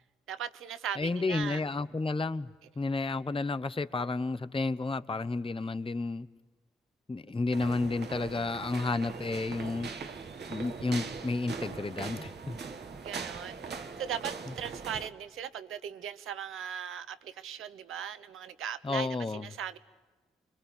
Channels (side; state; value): both; normal; correlation 0.74